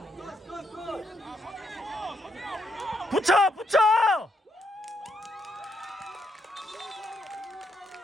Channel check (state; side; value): normal; both; correlation 0.77